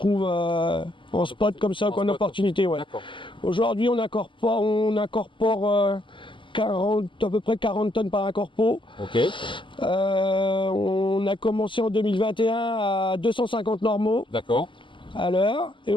en spot comme ça, en opportunité. Aujourd'hui, on incorpore à peu près 40 tonnes par incorpo. On a commencé en 2021 à 250 normaux à l'heure. Et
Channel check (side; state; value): right; late; 0.24 ms